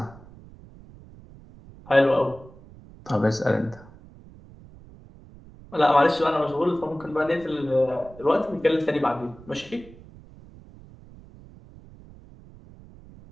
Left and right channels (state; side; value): noise; right; rumble, 21 dB below the sound